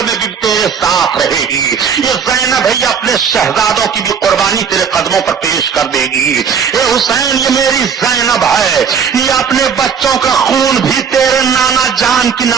میں بھی تیرے ساتھ رہے گی. یہ زینب ہے, یہ اپنے شہزادوں کی بھی قربانی تیرے قدموں پر پیش کر دے گی. اے حسین یہ میری زینب ہے, یہ اپنے بچوں کا خون بھی تیرے نانا جان کی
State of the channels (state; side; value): quieter; left; 6.9 dB